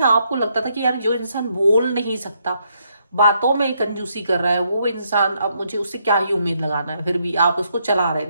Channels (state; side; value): inverted; both; correlation -0.75